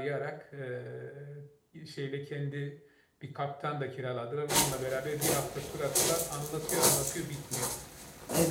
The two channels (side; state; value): both; identical; correlation 1.00